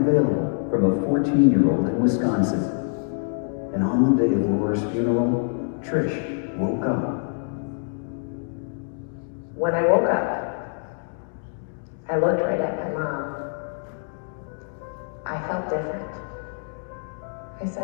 from a 14-year-old in Wisconsin. And on the day of Laura's funeral, Trish woke up. When I woke up, I looked right at my mom. I felt different. I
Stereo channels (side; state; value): right; silent; 62 dB below the other